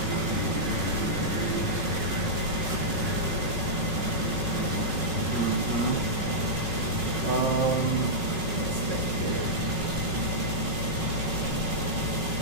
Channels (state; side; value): late; left; 5.3 ms